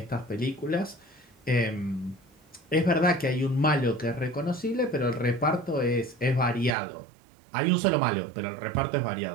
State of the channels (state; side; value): drops out; left; at 6.8 s